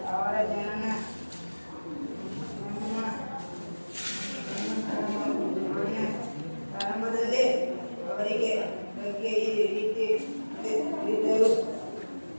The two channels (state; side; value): inverted; both; correlation -1.00